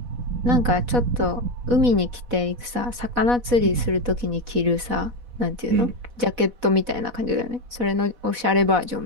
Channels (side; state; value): left; late; 4.1 ms